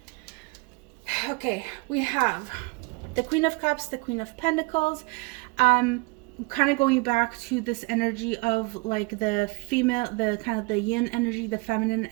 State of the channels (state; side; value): quieter; left; 27.8 dB